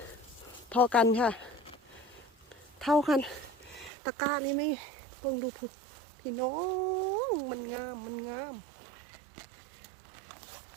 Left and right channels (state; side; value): drops out; left; at 3.9 s